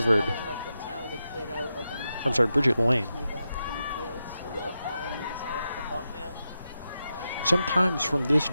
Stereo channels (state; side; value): inverted; both; correlation -0.88